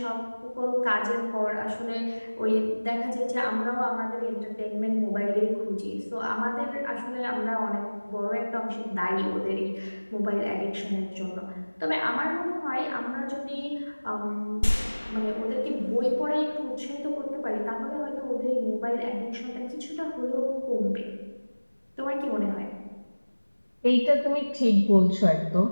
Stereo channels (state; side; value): inverted; both; correlation -1.00